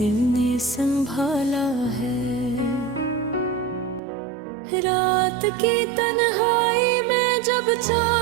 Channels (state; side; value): drops out; left; at 4.0 s